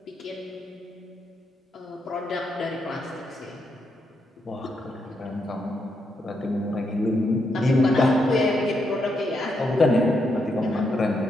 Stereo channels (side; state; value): both; normal; correlation 0.80